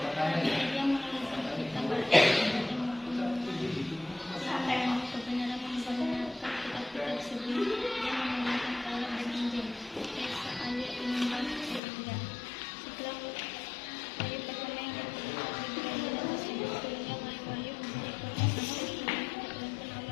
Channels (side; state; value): right; drops out; at 11.8 s